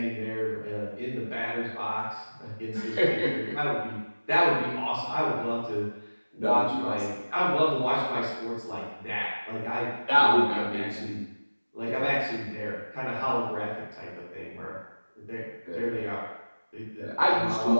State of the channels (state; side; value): inverted; both; correlation -1.00